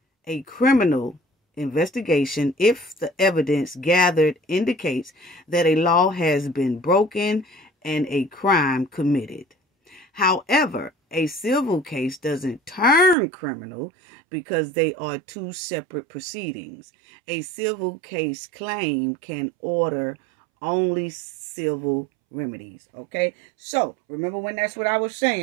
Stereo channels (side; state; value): left; drops out; at 13.2 s